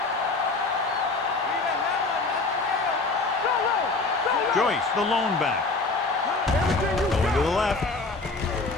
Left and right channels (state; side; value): quieter; right; 3.6 dB